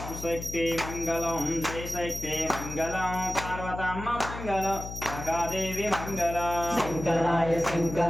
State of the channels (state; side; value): noise; left; hum, 9 dB below the sound